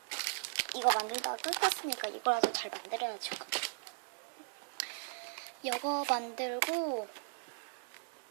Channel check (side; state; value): left; silent; digital silence